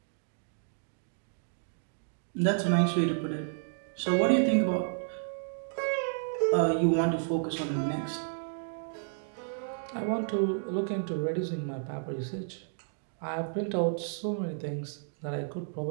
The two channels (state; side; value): silent; left; digital silence